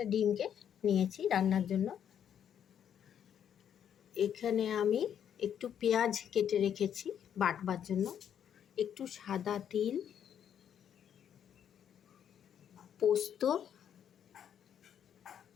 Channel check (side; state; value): right; quieter; 9.1 dB